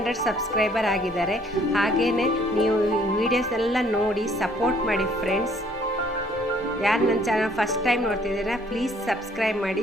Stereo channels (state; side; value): normal; both; correlation 0.61